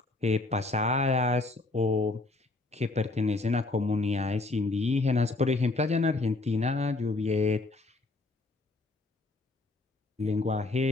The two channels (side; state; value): right; quieter; 3.1 dB